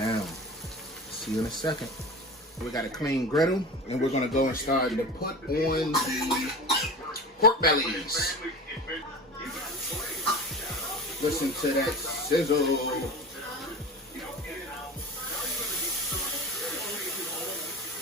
See you in a second. We got a clean griddle, and we're gonna go and start to put on the pork bellies. Listen to that sizzle.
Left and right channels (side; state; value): both; normal; correlation 0.33